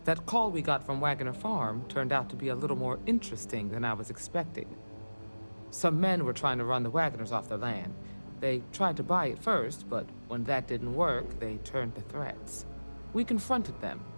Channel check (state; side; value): inverted; both; correlation -1.00